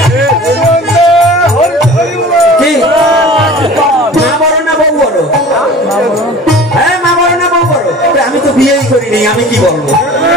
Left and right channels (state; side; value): normal; both; correlation 0.42